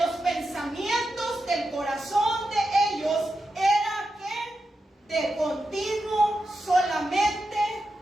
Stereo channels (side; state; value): both; normal; correlation 0.88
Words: los pensamientos del corazón de ellos era que de continuo solamente